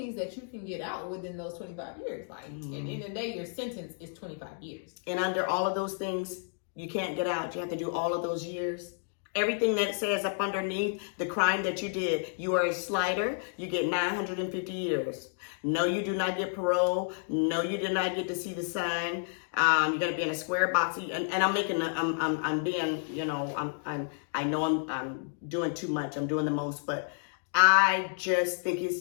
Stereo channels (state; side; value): silent; right; digital silence